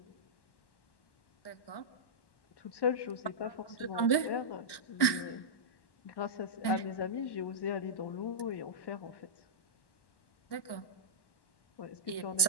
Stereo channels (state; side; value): late; right; 1.1 ms